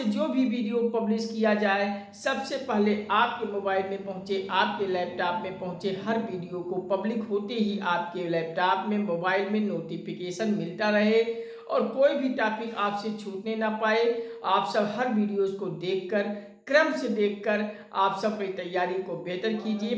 जो भी वीडियो पब्लिश किया जाए सबसे पहले आपके मोबाइल में पहुँचे, आपके लैपटॉप में पहुँचे। हर वीडियो को पब्लिक होते ही आपके लैपटॉप में, मोबाइल में नोटिफिकेशन मिलता रहे और कोई भी टॉपिक आपसे छूटने ना पाए। आप सब हर वीडियोज़ को देखकर, क्रम से देखकर आप सब अपनी तैयारी को बेहतर कीजिए।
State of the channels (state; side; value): identical; both; correlation 1.00